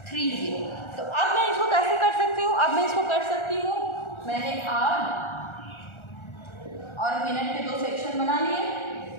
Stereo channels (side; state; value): right; late; 1.4 ms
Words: तो अब मैं इसको कैसे कर सकती हूँ, अब मैं इसको कर सकती हूँ, मैंने आवर और मिनट के 2 सेक्शन बना लिए।